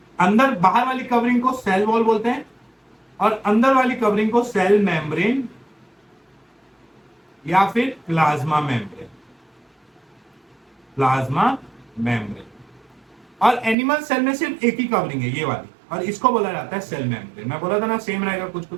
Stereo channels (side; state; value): left; drops out; at 13.8 s